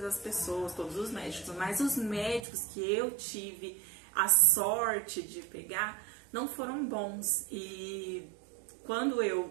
as pessoas, todos os médicos, mas os médicos que eu tive a sorte de pegar não foram bons. E quando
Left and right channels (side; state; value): left; drops out; at 2.5 s